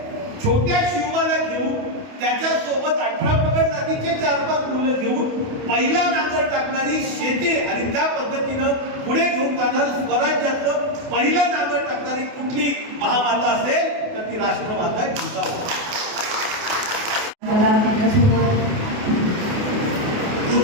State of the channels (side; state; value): left; late; 28 ms